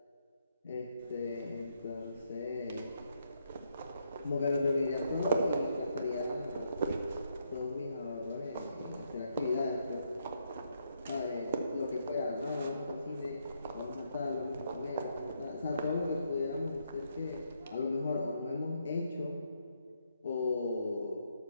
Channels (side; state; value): both; inverted; correlation -0.76